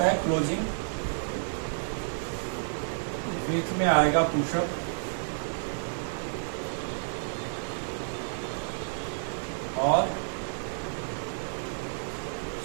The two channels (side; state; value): left; silent; digital silence